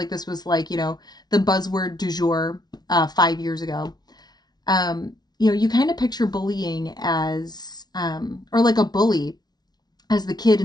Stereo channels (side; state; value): right; late; 0.19 ms